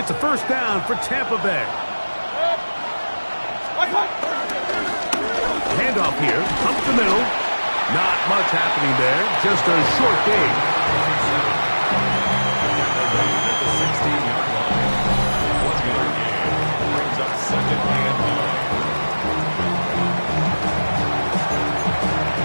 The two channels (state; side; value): inverted; both; correlation -1.00